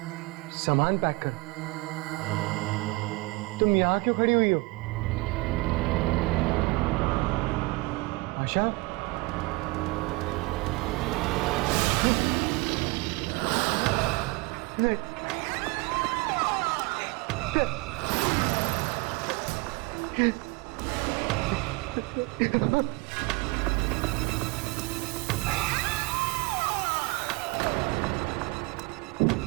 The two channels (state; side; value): quieter; left; 24.4 dB